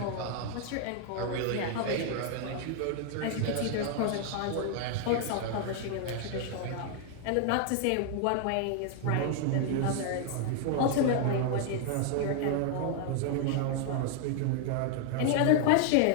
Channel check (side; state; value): both; different; correlation 0.00